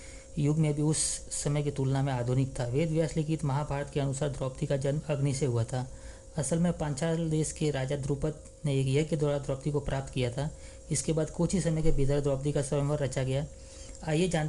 युग में भी उस समय की तुलना में आधुनिक था। वेद व्यास लिखित महाभारत के अनुसार द्रौपदी का जन्म अग्नि से हुआ था। असल में पांचाल देश के राजा द्रुपद ने एक यज्ञ के द्वारा द्रौपदी को प्राप्त किया था। इसके बाद कुछ ही समय के भीतर द्रौपदी का स्वयंवर रचा गया। आइए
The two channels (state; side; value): identical; both; correlation 1.00